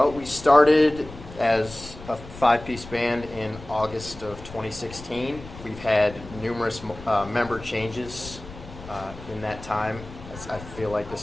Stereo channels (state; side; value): noise; left; rumble, 16 dB below the sound